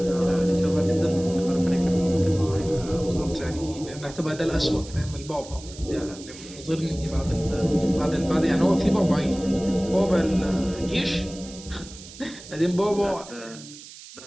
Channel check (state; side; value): noise; right; hiss, 17 dB below the sound